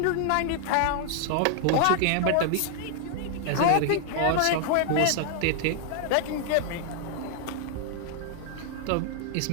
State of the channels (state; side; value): different; both; correlation 0.00